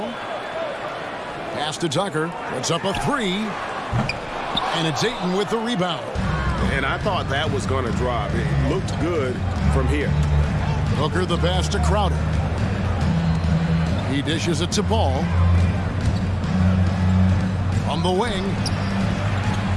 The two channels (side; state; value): both; identical; correlation 1.00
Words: Pass to Tucker. Puts up a three. And it's Ayton with the rebound. And I thought that was going to drop. It looked good from here. Booker the pass to Crowder. He dishes it to Paul. On the wing.